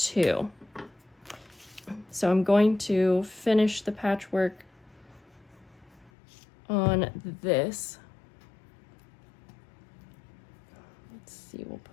So I'm going to finish the patchwork on this. We'll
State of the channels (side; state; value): right; drops out; at 6.1 s